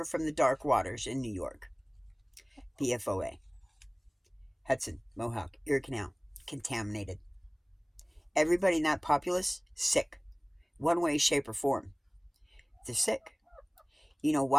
from the dark waters in New York. PFOA. Hudson, Mohawk, Erie Canal. Contaminated. Everybody in that populace, sick. One way, shape, or form. They're sick. You know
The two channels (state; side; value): identical; both; correlation 1.00